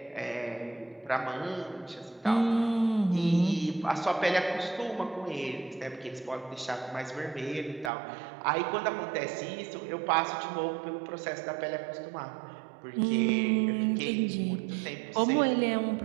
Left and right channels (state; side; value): drops out; left; at 7.9 s